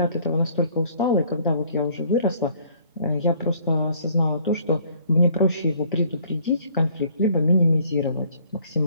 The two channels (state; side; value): inverted; both; correlation -0.59